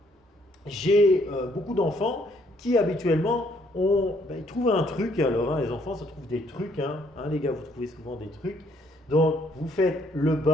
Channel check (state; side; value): normal; both; correlation 0.67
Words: J'ai beaucoup d'enfants qui, habituellement, ils trouvent un truc. Alors, les enfants, ça trouve des trucs. Les gars, vous trouvez souvent des trucs. Donc, vous faites le